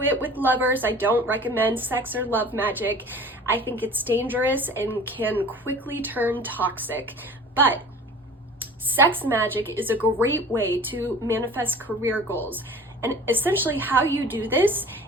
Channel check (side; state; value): both; normal; correlation 0.43